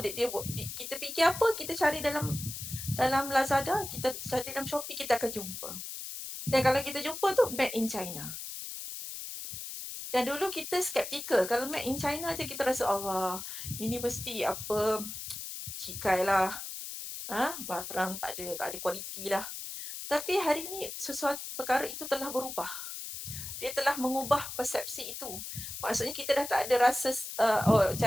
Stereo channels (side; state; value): left; noise; hiss, 8 dB below the sound